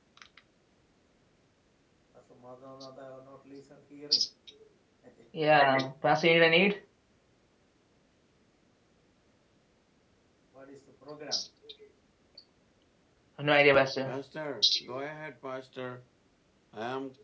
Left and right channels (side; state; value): both; identical; correlation 1.00